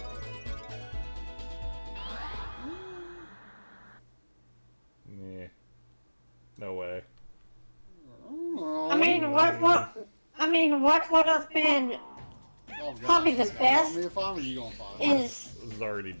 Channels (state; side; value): inverted; both; correlation -1.00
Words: Nah. No way. Oh, I mean, what would have been oh, God. probably the Just best want me to find, or you gonna find? is This is already